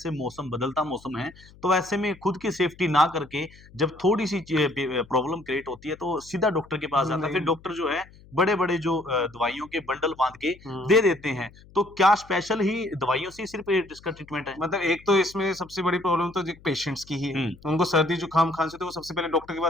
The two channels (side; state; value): left; noise; hum, 23 dB below the sound